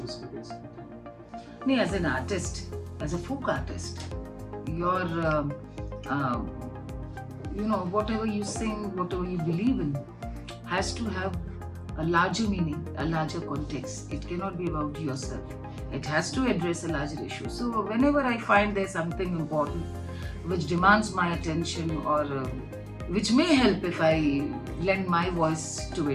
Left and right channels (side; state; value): both; identical; correlation 1.00